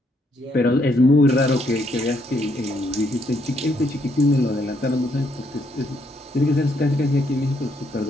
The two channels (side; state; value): both; normal; correlation 0.73